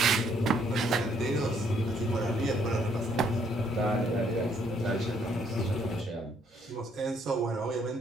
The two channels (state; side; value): normal; both; correlation 0.68